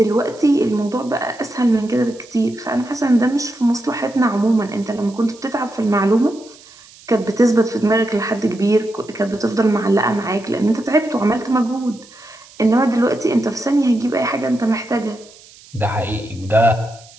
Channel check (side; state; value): right; noise; hiss, 23 dB below the sound